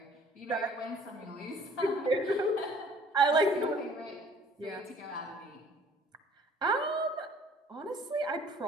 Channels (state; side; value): normal; both; correlation 0.54